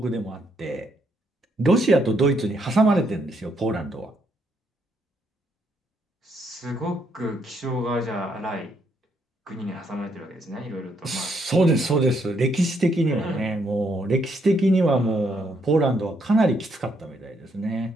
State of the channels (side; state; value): both; normal; correlation 0.74